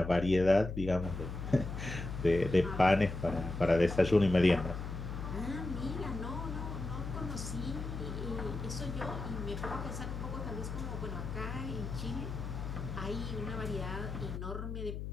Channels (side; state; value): left; noise; hum, 6 dB below the sound